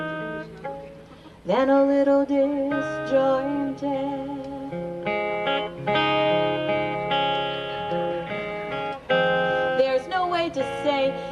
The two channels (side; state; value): both; identical; correlation 1.00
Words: than a little disjointed. There's no way to say